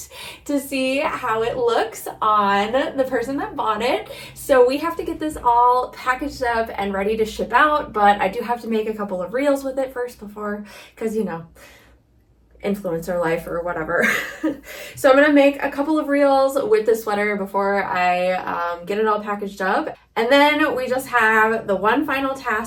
to see how it looks on the person that bought it. So we have to get this all packaged up and ready to ship out, but I do have to make a couple of reels with it first before, because you know, influencer life or whatever. So I'm gonna make a couple of reels with the sweater before I get it all packaged up. And then we just have the one final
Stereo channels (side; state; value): both; identical; correlation 1.00